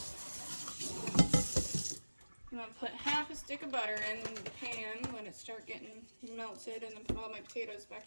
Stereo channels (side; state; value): both; inverted; correlation -1.00